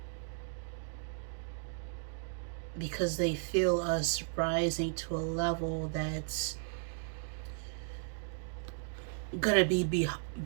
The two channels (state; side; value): silent; left; digital silence